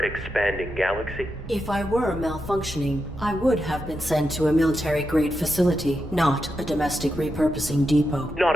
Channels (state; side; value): normal; both; correlation 0.87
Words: galaxy. If I were malfunctioning, I would have been sent to a military-grade facility, not a domestic repurposing depot. Not